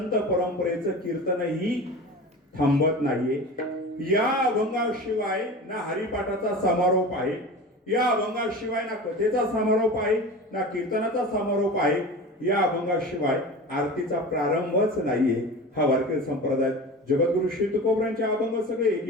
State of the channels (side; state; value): both; normal; correlation 0.33